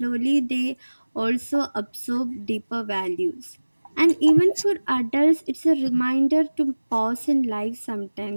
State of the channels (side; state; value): both; inverted; correlation -1.00